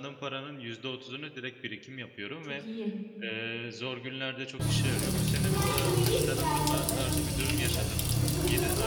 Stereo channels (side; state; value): both; identical; correlation 1.00